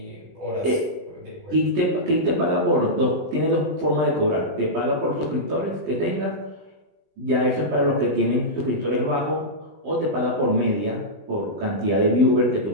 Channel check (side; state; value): left; late; 20 ms